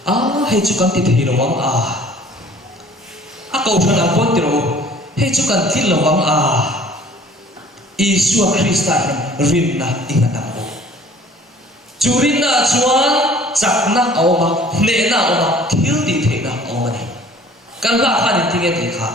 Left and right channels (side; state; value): both; normal; correlation 0.51